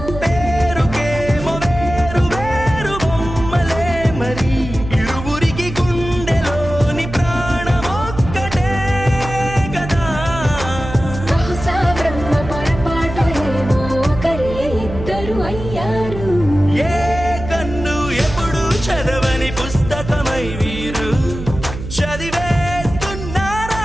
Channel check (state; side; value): noise; right; hum, 9 dB below the sound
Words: పేరుకేమో వేరు వేరు బొమ్మలే మరి ఇరువురికి గుండెలోని ప్రాణమొక్కటే కదా. బహుశా బ్రహ్మ పొరపాటు ఏమో ఒకరే ఇద్దరు అయ్యారు. ఏ కన్ను ఎప్పుడు చదవని పుస్తకమై వీరు